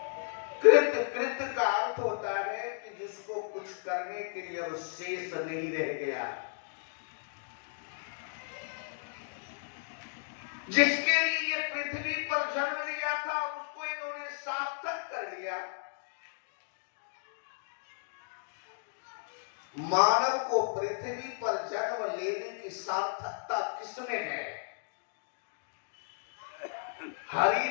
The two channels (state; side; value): silent; right; digital silence